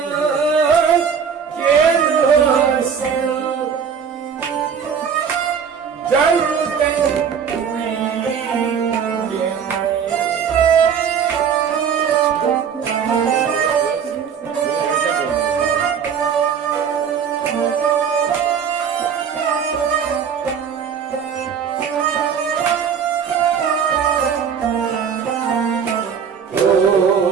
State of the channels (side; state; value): left; quieter; 7.1 dB